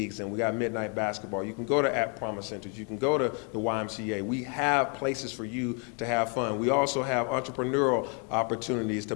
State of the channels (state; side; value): quieter; right; 37.2 dB